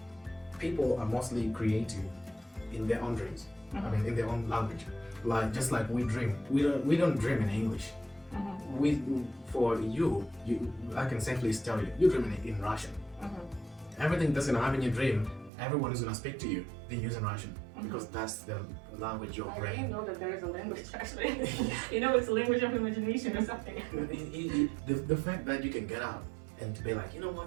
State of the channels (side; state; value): left; drops out; at 15.5 s